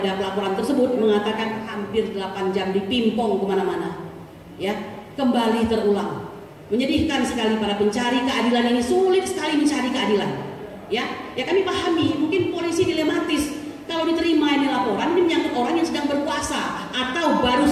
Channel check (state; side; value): identical; both; correlation 1.00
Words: pelaporan tersebut, mengatakan hampir 8 jam dipimpong kemana-mana, ya, kembali terulang. Menyedihkan sekali, para pencari keadilan ini sulit sekali mencari keadilan, ya. Ya kami pahami, mungkin polisi dilematis. Kalau diterima ini laporan, ini menyangkut orang yang sedang berkuasa atau baru